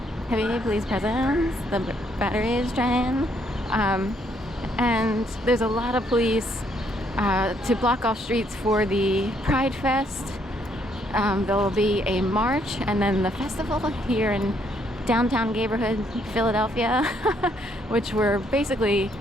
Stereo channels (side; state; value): both; normal; correlation 0.70